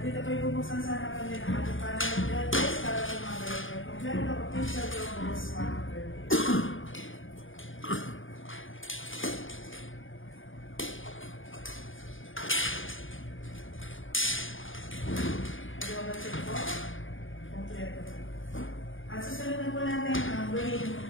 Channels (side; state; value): right; late; 0.58 ms